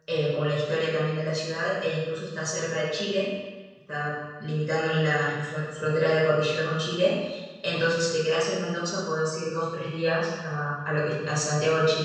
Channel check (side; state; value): both; identical; correlation 1.00